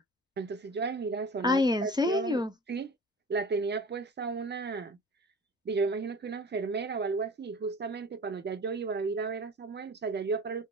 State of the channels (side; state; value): both; normal; correlation 0.40